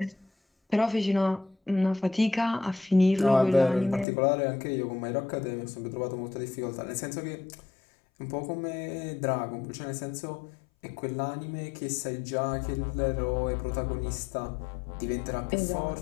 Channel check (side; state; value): right; drops out; at 4.0 s